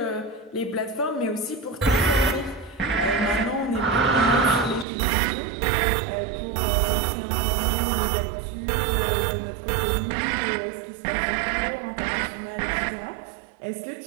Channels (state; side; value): drops out; left; at 4.9 s